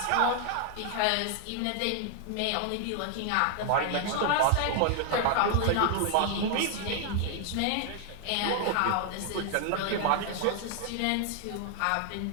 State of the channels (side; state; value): both; different; correlation 0.00